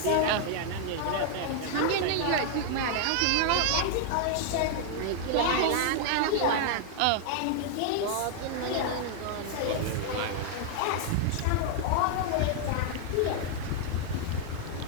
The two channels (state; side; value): different; both; correlation 0.00